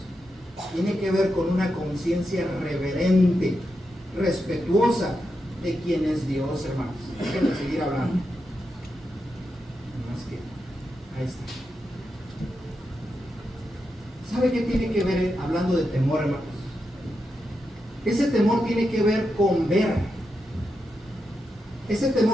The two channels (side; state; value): both; normal; correlation 0.86